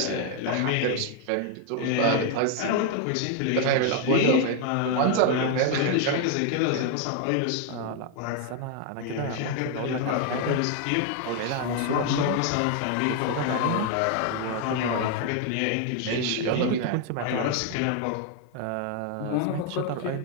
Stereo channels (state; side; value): different; both; correlation 0.01